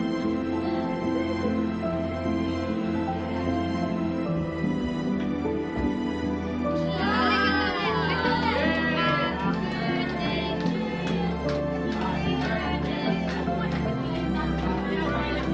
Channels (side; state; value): both; identical; correlation 1.00